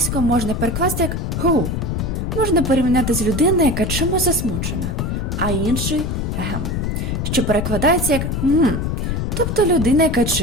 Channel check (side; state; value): left; noise; rumble, 1 dB below the sound